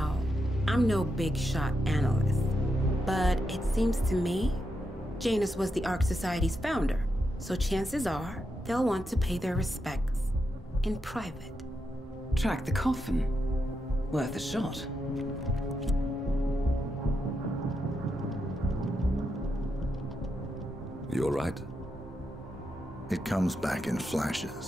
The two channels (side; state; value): both; normal; correlation 0.84